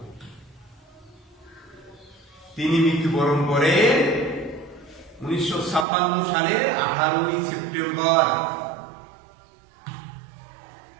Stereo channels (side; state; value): left; drops out; at 5.9 s